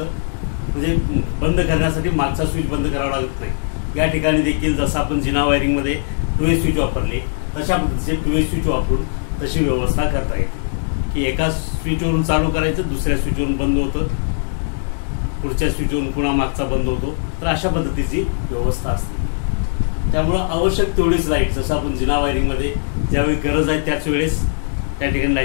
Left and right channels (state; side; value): silent; right; digital silence